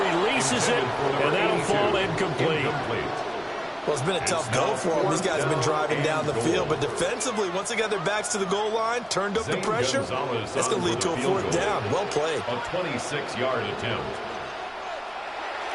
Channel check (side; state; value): both; identical; correlation 1.00